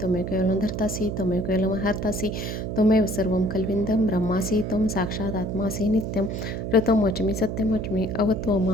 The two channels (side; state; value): right; noise; hum, 4 dB below the sound